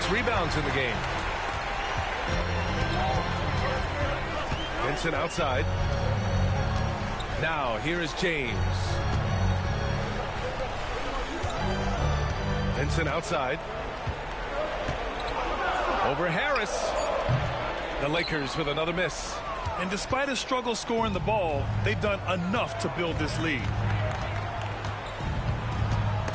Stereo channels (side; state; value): both; identical; correlation 1.00